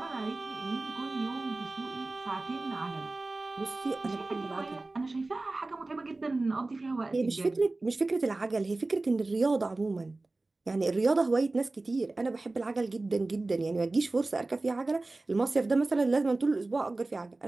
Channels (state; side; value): quieter; left; 3.2 dB